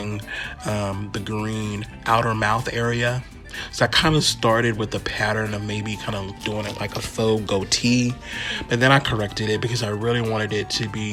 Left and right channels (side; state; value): both; identical; correlation 1.00